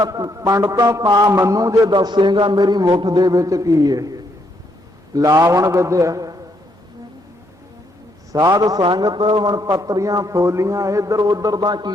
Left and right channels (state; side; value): normal; both; correlation 0.74